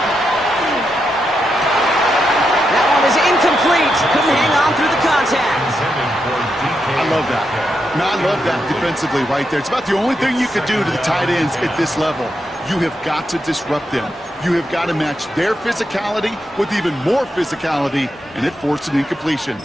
That one is incomplete. Couldn't hang on through the contact. I love that. No, I love that defensively right there. It's about the only thing you could do to the tight ends at this level. You have got to disrupt them. You have got to match their physicality with even more physicality, and it forced an incompletion.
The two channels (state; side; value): normal; both; correlation 0.84